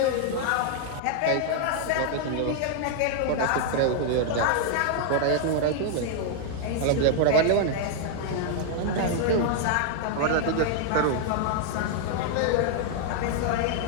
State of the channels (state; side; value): different; both; correlation 0.00